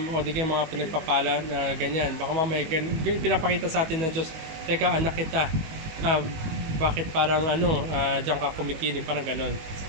o di kaya mga pinagpapala na ganyan. Baka mamaya pinapakita sa atin ng Diyos, teka, anak kita, bakit parang diyan ka kumikilig, parang ganon.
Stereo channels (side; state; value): left; late; 19 ms